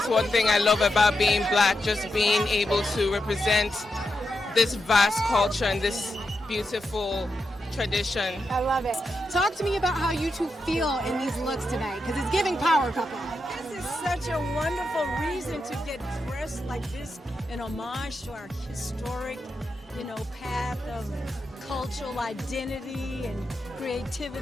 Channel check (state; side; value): normal; both; correlation 0.86